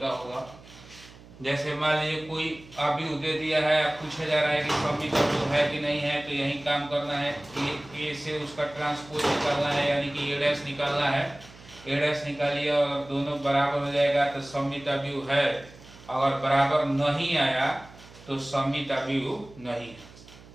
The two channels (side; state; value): right; noise; hum, 21 dB below the sound